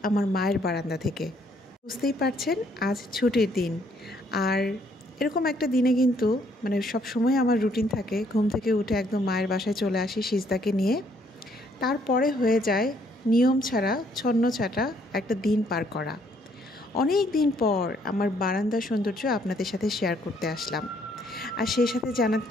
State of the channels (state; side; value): normal; both; correlation 0.67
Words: আমার মায়ের বারান্দা থেকে। বুঝতেই পারছেন আজ ছুটির দিন, আর এরকম একটা দিনে কিন্তু সব সময় আমার রুটিন থাকে ঘুম থেকে উঠে একদম মায়ের বাসায় চলে আসি সিজদাকে নিয়ে। তারপরে হয়ে যায় নিয়ম ছাড়া ছন্ন ছাটা একটা দিন পার করা। অনেক দিন পর আমার বারান্দার সৌন্দর্য আপনাদের সাথে শেয়ার করতে আসলাম, আর সেই সাথে